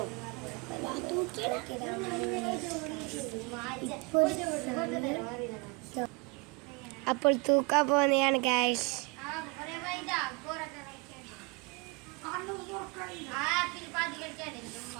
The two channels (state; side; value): quieter; left; 29.4 dB